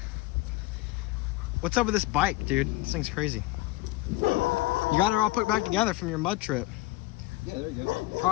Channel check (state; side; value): quieter; right; 18.6 dB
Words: What's up with this bike, dude? This thing's crazy. You got it all put back together from your mud trip. Yeah, there we go. All